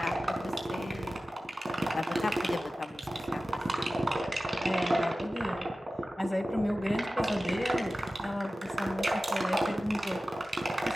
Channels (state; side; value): normal; both; correlation 0.96